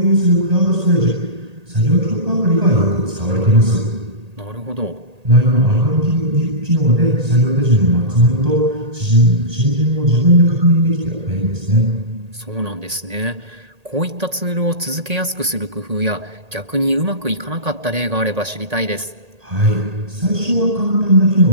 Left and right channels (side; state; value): left; late; 1.8 ms